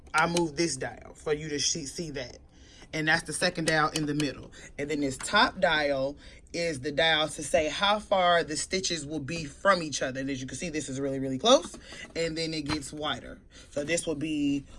I moved this dial for you to see that. And that's the second dial in the middle. And then this top dial is the dial to say how far the stitches will be from each other. And as you can see, this is really, really close. And then it gets wider. So this will be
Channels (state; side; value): identical; both; correlation 1.00